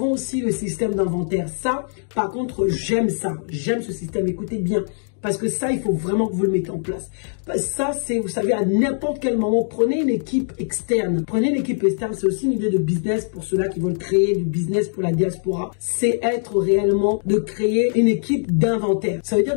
aussi le système d'inventaire. Ça, par contre, j'aime ça. J'aime ce système. Écoutez bien. Parce que ça, il faut vraiment que vous le mettez en place. Ça, c'est, vous savez, à n'importe quel moment, prenez une équipe externe. Prenez une équipe externe, c'est aussi une idée de business pour ceux-là qui veulent créer du business pour la diaspora. C'est être réellement de créer une équipe d'inventaire. Ça veut dire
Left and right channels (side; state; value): right; silent; digital silence